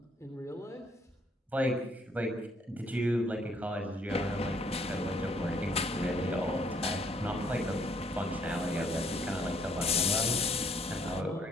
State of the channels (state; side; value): normal; both; correlation 0.65